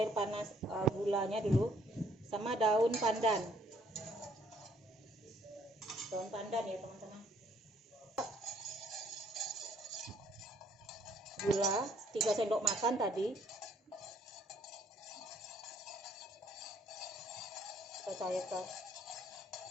panas, gulanya dulu, sama daun pandan. Daun pandan ya teman-teman. Gula 3 sendok makan tadi. Kita cairkan.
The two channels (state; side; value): normal; both; correlation 0.64